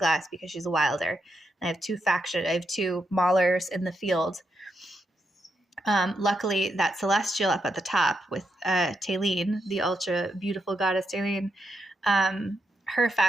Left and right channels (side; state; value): both; normal; correlation 0.82